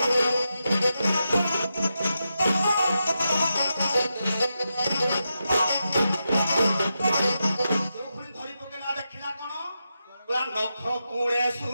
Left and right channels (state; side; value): inverted; both; correlation -0.88